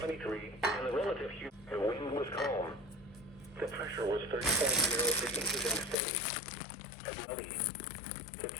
and the relative humidity, the wind was calm. The pressure was 30.03 inches and steady. At Millie, the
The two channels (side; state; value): right; drops out; at 6.0 s